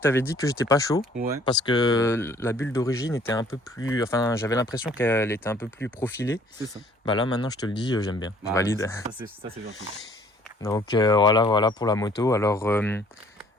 dit que j'étais pas chaud. Ouais. Parce que la bulle d'origine était un peu plus... Enfin, j'avais l'impression qu'elle était un peu plus profilée. C'est ça. Bah là, maintenant, je te le dis, j'aime bien. Je Ah, valide. Ça, c'est gentil. Donc voilà pour la moto. Alors,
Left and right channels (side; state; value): both; normal; correlation 0.58